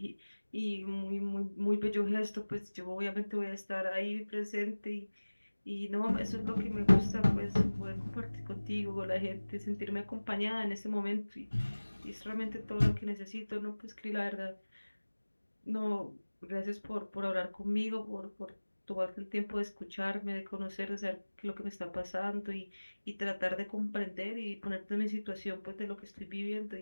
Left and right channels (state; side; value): inverted; both; correlation -1.00